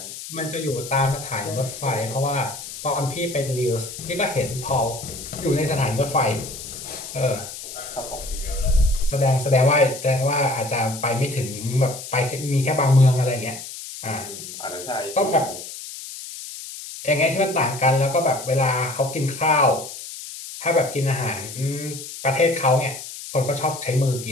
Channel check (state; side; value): noise; left; hiss, 11 dB below the sound